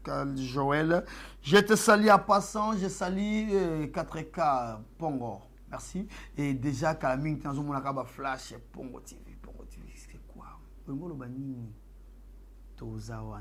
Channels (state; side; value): identical; both; correlation 1.00